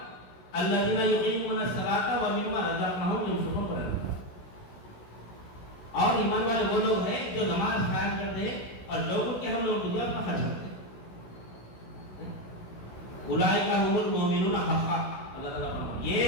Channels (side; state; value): right; late; 16 ms